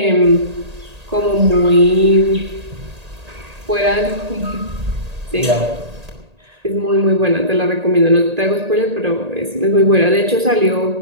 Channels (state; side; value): late; left; 1.8 ms